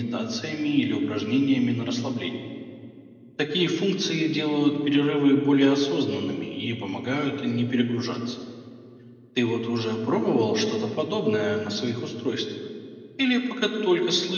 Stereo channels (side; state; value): both; identical; correlation 1.00